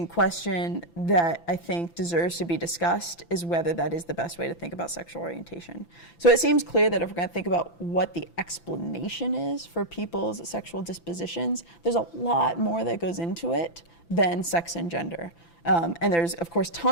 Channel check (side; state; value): right; late; 5.9 ms